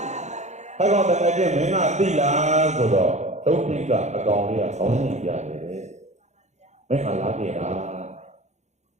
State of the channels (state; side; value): late; left; 0.33 ms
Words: ဟဲ့ကောင်တကယ်ချင်းမင်းကသိလားဆိုတော့တုံးကြီးကအကောင်လေးကဆောင်းနေကြတယ်မင်းကလာကြတာ